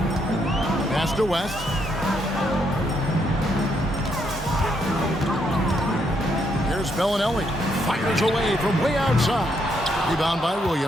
Pass to West. Here's Bellinelli. Fires away from way outside. Rebound by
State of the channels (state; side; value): normal; both; correlation 0.75